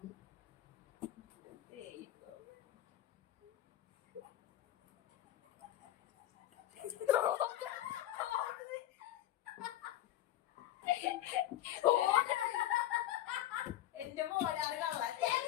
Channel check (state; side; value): quieter; right; 13.3 dB